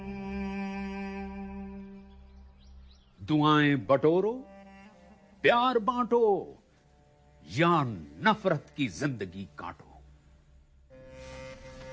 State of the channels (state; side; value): identical; both; correlation 1.00